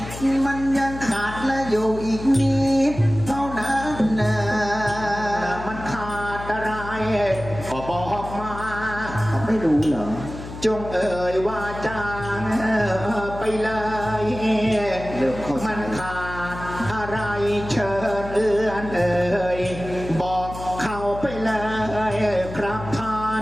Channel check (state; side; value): noise; left; hum, 11 dB below the sound